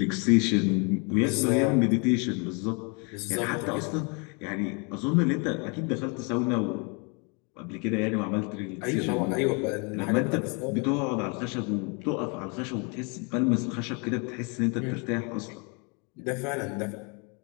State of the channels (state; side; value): quieter; right; 33.2 dB